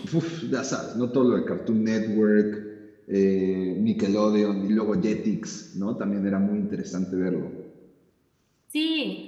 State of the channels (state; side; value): identical; both; correlation 1.00